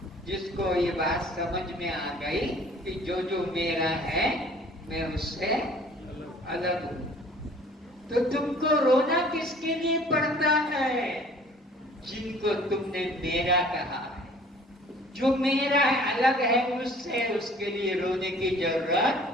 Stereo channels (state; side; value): normal; both; correlation 0.52